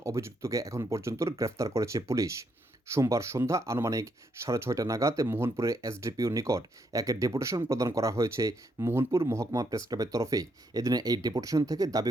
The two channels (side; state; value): both; normal; correlation 0.76